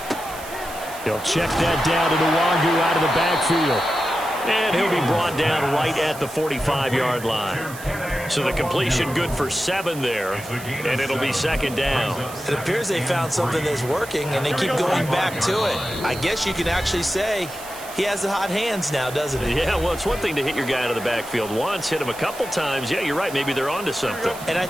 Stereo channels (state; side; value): noise; right; hiss, 15 dB below the sound